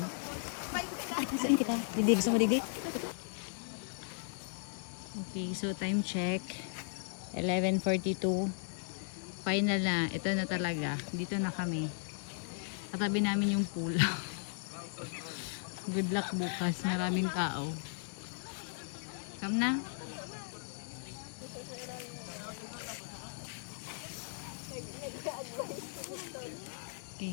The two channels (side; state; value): right; silent; digital silence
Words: Saan kita? Didi, gusto mo didi? Okay, so time check. 11:42. Final na. Ito na talaga. Dito na kami. Katabi namin yung pool. Good luck bukas. Maraming tao. Come na.